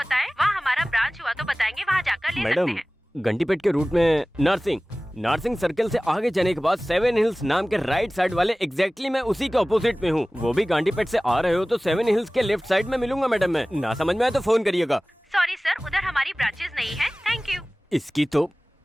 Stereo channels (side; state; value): both; normal; correlation 0.98